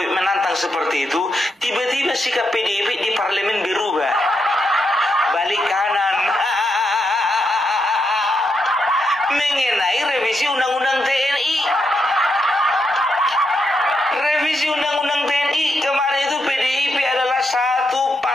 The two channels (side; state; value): both; normal; correlation 0.82